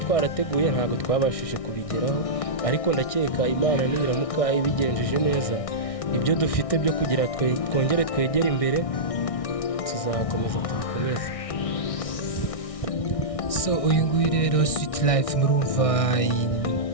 ntabwo twabashije kubigeraho, ariko ndakeka Imana niramuka ibigenjeje neza, ibyo dufite byo kugira twongere twegere imbere, tuzakomeza tubikomeze. So uyu nguyu rero Sweet Life, murumva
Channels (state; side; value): late; right; 1.6 ms